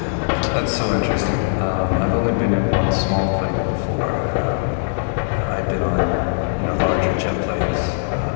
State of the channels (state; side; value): silent; right; 66 dB below the other